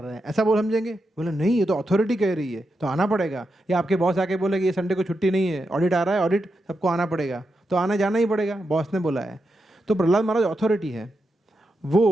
हैं, ऐसा बोल समझेंगे। बोले नहीं, ये तो अथॉरिटी कह रही है तो आना पड़ेगा। या आपके बॉस आके बोले कि ये संडे को छुट्टी नहीं है, ऑडिट आ रहा है, ऑडिट सबको आना पड़ेगा, तो आना जाना ही पड़ेगा, बॉस ने बोला है। तो प्रहलाद महाराज अथॉरिटी है,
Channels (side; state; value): both; normal; correlation 0.86